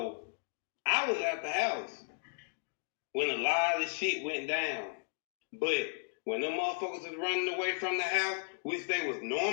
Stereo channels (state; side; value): silent; right; digital silence